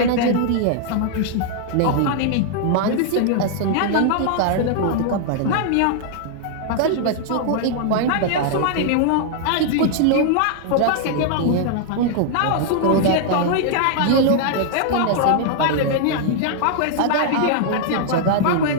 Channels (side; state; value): both; different; correlation -0.01